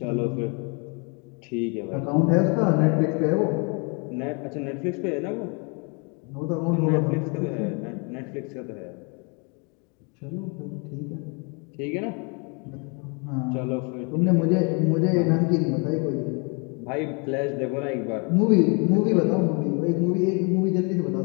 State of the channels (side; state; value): right; quieter; 34.1 dB